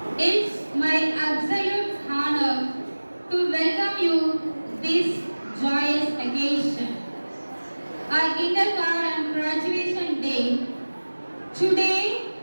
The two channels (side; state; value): both; inverted; correlation -1.00